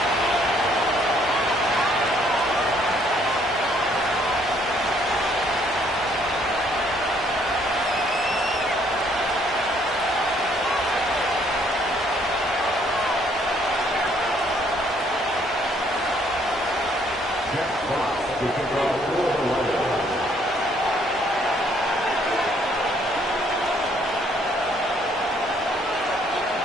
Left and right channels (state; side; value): normal; both; correlation 0.65